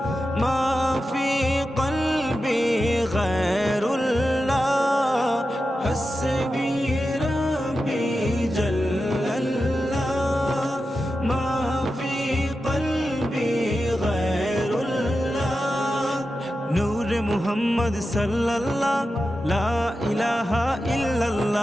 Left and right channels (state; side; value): normal; both; correlation 0.91